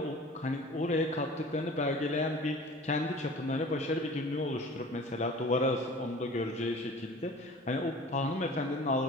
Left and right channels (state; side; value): normal; both; correlation 0.43